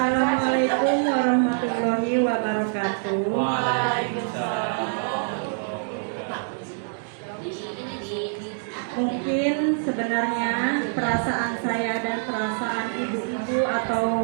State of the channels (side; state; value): left; silent; digital silence